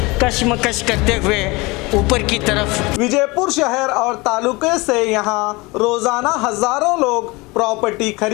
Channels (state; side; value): quieter; right; 24.3 dB